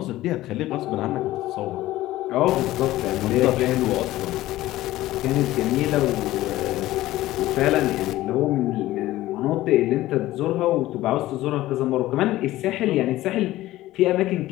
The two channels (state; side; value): quieter; right; 16.1 dB